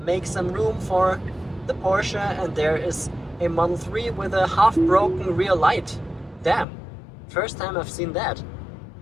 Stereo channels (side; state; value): right; drops out; at 6.7 s